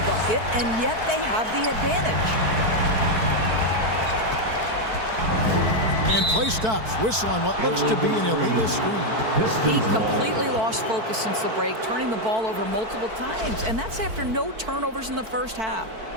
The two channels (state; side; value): late; left; 4.5 ms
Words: bucket, and yet they have the advantage. And play stops. Whistle on what looks to be an illegal screen. He completely lost focus since the break, turning the ball over multiple times, and that's after no turnovers in the first half.